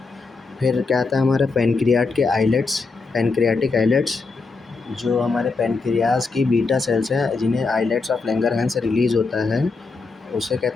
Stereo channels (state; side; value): quieter; right; 4.2 dB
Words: फिर क्या आता है हमारे पैनक्रियाट के आइलेट्स, पैनक्रियाटिक आइलेट्स जो हमारे पैनक्रियाज की बीटा सेल्स हैं जिन्हें आइलेट्स ऑफ लैंगरहैंस से रिलीज़ होता है उसे